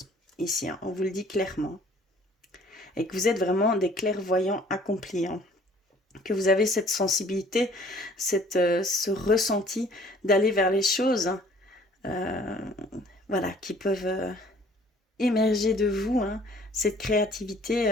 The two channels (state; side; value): normal; both; correlation 0.55